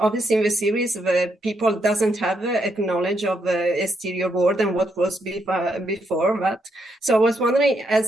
in the series, the people doesn't have a knowledge of the exterior world and what was before that. So I was wondering,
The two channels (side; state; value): both; normal; correlation 0.78